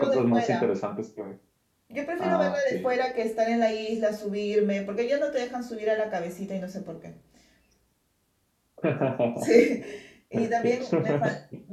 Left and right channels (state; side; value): identical; both; correlation 1.00